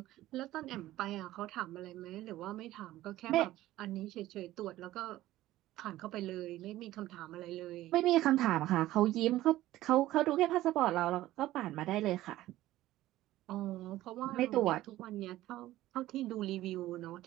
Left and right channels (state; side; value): quieter; left; 15.4 dB